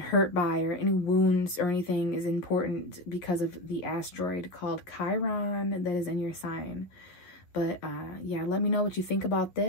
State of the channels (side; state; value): right; late; 11 ms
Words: by or any wounds or anything is important because of the asteroid called Chiron that is in your sign. But yeah, let me know what you think about